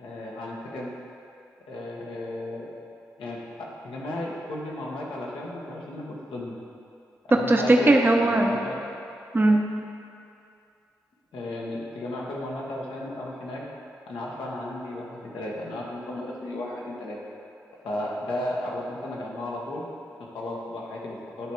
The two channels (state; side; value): normal; both; correlation 0.86